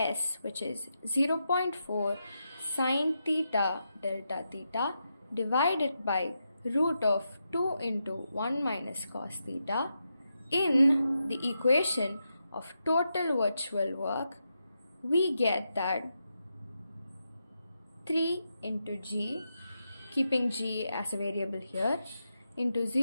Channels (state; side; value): inverted; both; correlation -0.85